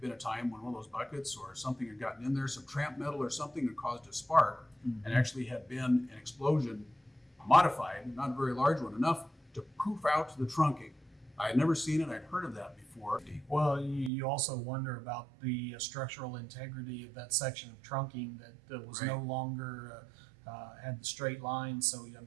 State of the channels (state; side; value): drops out; left; at 14.1 s